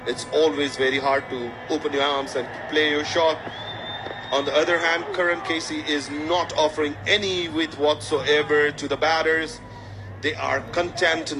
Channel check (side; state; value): both; identical; correlation 1.00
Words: it's always very hard to open your arms and play your shot. On the other hand, Karan Casey is not offering any width whatsoever to the batters. They are content,